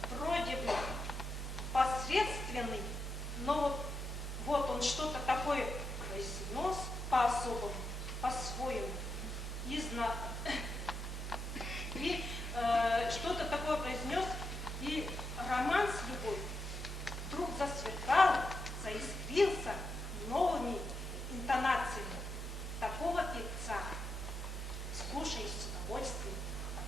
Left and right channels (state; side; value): normal; both; correlation 0.84